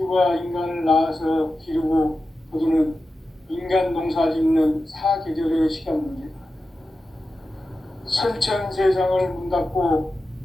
인간을 낳아서 기르고 거두는 인간 농사 짓는 사계절의 시간 문제다. 선천 세상을 문 닫고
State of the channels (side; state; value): both; normal; correlation 0.92